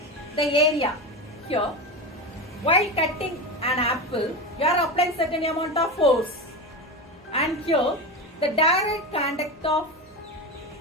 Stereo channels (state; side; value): normal; both; correlation 0.21